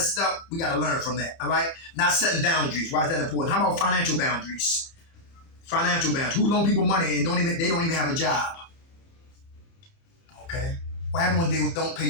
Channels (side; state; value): right; late; 30 ms